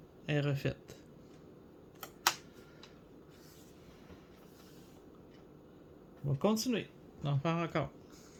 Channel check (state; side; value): identical; both; correlation 1.00